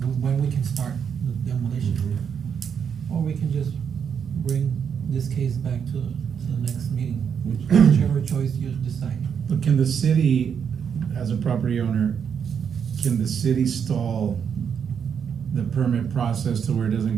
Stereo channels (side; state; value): left; quieter; 7.4 dB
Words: when we can start the demolition. Or we can just bring this case back to the next meeting, whichever choice you decide. But can the city, as a property owner, can the city stall the permit process to where it doesn't